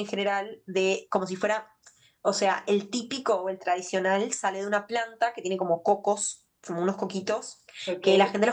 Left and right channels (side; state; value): both; identical; correlation 1.00